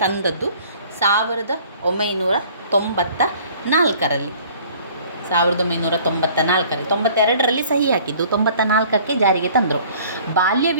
1994ರಲ್ಲಿ. 1994ರಲ್ಲಿ 92ರಲ್ಲಿ ಸಹಿ ಹಾಕಿದ್ದು, 94ಕ್ಕೆ ಜಾರಿಗೆ ತಂದರು. ಬಾಲ್ಯ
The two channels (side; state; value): both; inverted; correlation -0.52